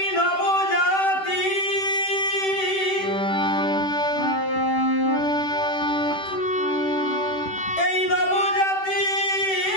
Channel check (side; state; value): right; late; 10 ms